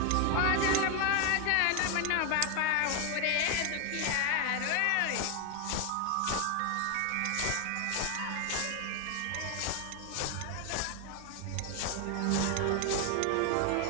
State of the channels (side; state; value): both; different; correlation 0.01